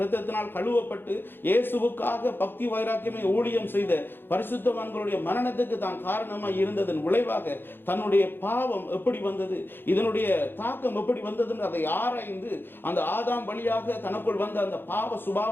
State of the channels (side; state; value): right; late; 0.10 ms